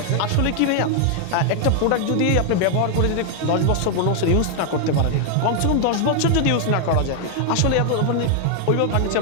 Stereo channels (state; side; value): different; both; correlation 0.00